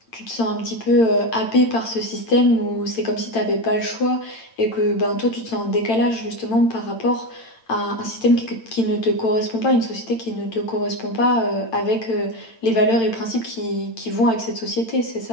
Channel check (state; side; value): late; right; 8.9 ms